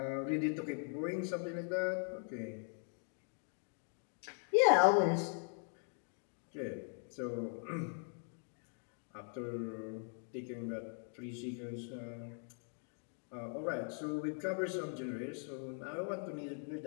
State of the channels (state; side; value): silent; right; 51 dB below the other